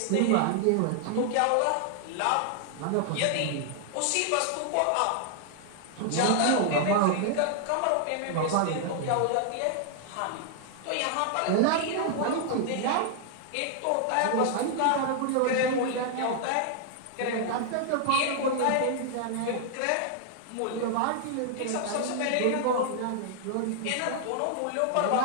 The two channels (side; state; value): both; different; correlation 0.00